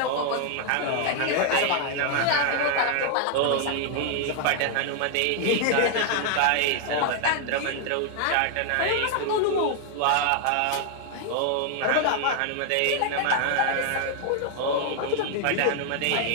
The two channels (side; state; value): both; different; correlation 0.00